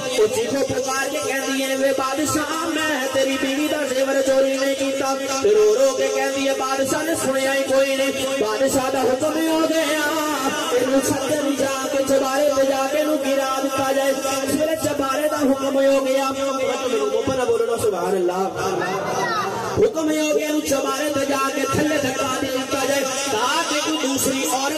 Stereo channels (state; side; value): identical; both; correlation 1.00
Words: وہ چیخو پکار کے کہندی ہے وے بادشاہ میں تیری بیوی دا زیور چوری نہیں کیتا رو رو کے کہندی ہے بادشاہ نے سنیا ہی کوئی نہیں بادشاہ دا حکم ہی ہو گیا اینو چھتر جا کے چبارے تے جا کے نو گرا دتا جائے اس ویلے چبارے دا حکم ہو گیا اوپر بولو سبحان اللہ حکم ہو گیا نو چبارے تے جا کے تھلے دھکا دتا جائے تاکہ کوئی دوسری